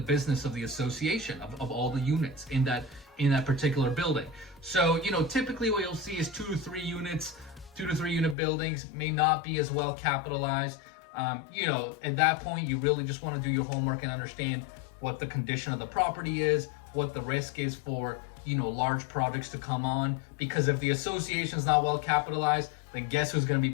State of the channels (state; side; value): drops out; right; at 8.3 s